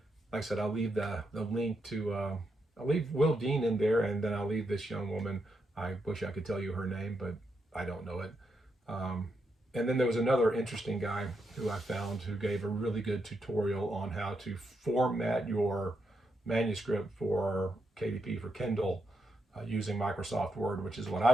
Like I said, I'll leave the link to, I'll leave Will Dean in there, and then I'll leave this young woman. I wish I could tell you her name, but I don't know it. And then there was another interesting guy who I found who gave a really good tutorial on how to format your manuscript for KDP, for Kindle, using Microsoft Word, which is what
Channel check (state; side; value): normal; both; correlation 0.82